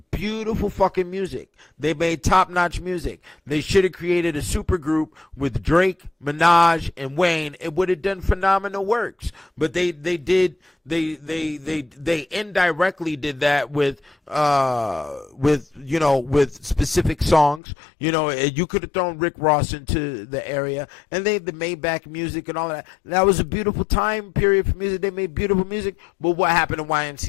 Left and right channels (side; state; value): right; drops out; at 17.6 s